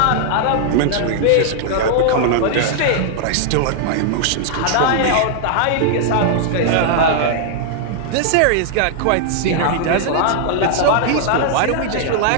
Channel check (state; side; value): different; both; correlation -0.01